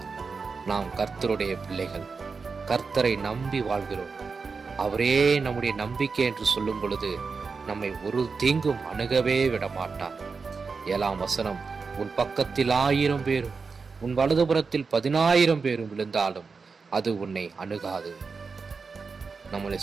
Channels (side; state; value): left; quieter; 4.8 dB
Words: நாம் கர்த்தருடைய பிள்ளைகள், கர்த்தரை நம்பி வாழ்கிறோம். அவரே நம்முடைய நம்பிக்கை என்று சொல்லும் பொழுது நம்மை ஒரு தீங்கும் அணுகவே விட மாட்டார். 7ஆம் வசனம், உன் பக்கத்தில் 1000 பேரும் உன் வலதுபுறத்தில் 10,000 பேரும் விழுந்தாலும் அது உன்னை அணுகாது. நம்மளை